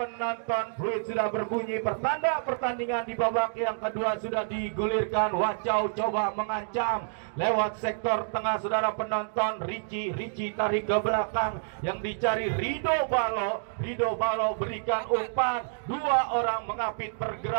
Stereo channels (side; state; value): left; silent; digital silence